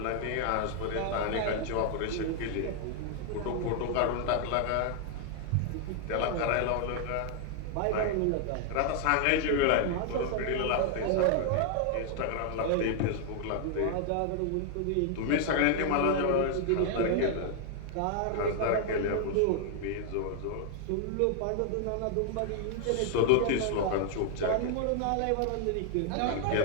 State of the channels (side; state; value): both; different; correlation 0.00